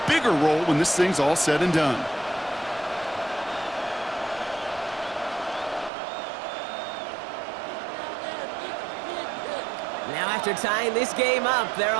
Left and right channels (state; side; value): drops out; left; at 5.9 s